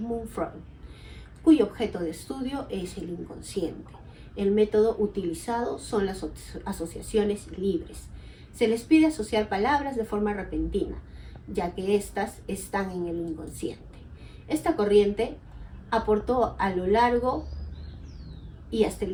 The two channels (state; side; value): identical; both; correlation 1.00